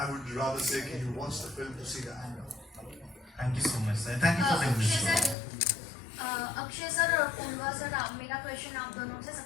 would rather say that you watch the film to see the anger. Thank you so much, sir. Thank you for taking this. Akshay sir और पूर्वा sir, मेरा question आप दोनों से।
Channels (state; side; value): drops out; right; at 5.4 s